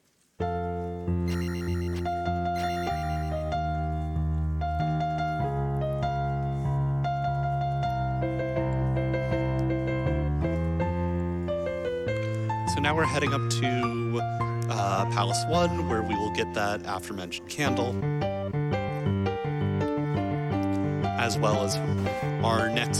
so now we're heading up to Palace 1, where we will get that aforementioned candle, as well as our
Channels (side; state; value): both; identical; correlation 1.00